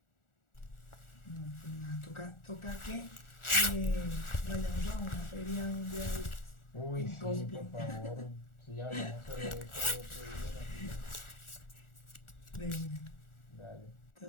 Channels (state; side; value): late; right; 1.4 ms